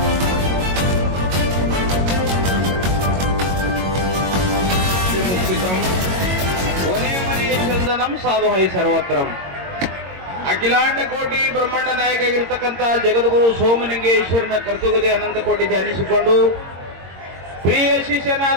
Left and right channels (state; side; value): late; left; 22 ms